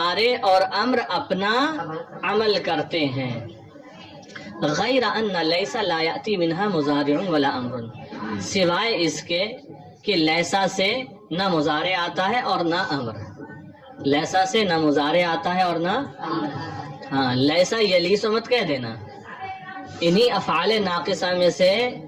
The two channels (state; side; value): identical; both; correlation 1.00